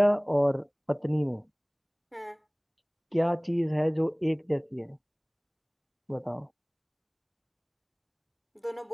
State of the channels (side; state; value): both; identical; correlation 1.00